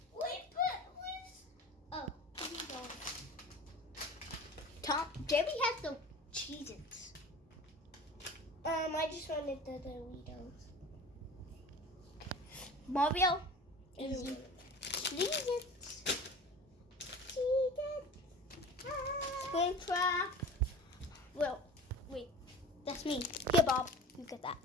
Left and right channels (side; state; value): both; normal; correlation 0.38